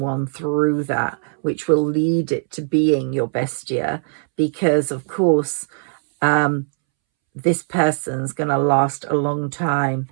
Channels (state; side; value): silent; left; 66 dB below the other